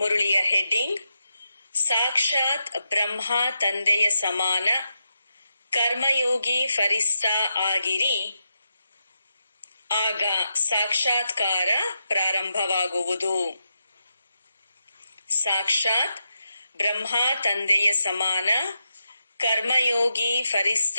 heading: ಸಾಕ್ಷಾತ್ ಬ್ರಹ್ಮ ತಂದೆಯ ಸಮಾನ ಕರ್ಮಯೋಗಿ ಫರಿಸ್ತಾ ಆಗಿರಿ, ಆಗ ಸಾಕ್ಷಾತ್ಕಾರ ಪ್ರಾರಂಭವಾಗುವುದು. ಸಾಕ್ಷಾತ್ ಬ್ರಹ್ಮ ತಂದೆಯ ಸಮಾನ ಕರ್ಮಯೋಗಿ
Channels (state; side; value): inverted; both; correlation -0.86